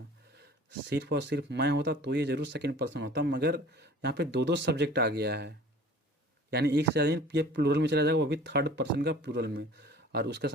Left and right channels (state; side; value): normal; both; correlation 0.46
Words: सिर्फ और सिर्फ मैं होता तो ये जरूर सेकंड पर्सन होता। मगर यहाँ पे दो दो सब्जेक्ट आ गया है, यानी एक से ज़्यादा ये प्लूरल में चला जाएगा, वो भी थर्ड पर्सन का प्लूरल में, और उसके